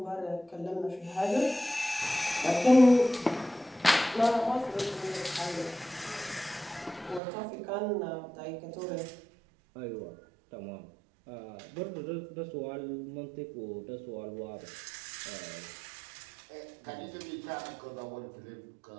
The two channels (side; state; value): left; drops out; at 7.2 s